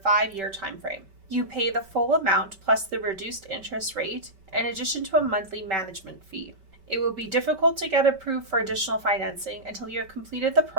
5-year time frame. You pay the full amount plus the reduced interest rate in addition to a monthly management fee. It will be difficult to get approved for additional financing until you have completed the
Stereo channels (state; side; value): late; left; 5.2 ms